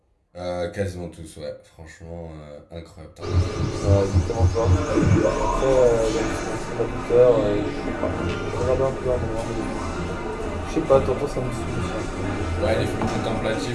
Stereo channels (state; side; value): identical; both; correlation 1.00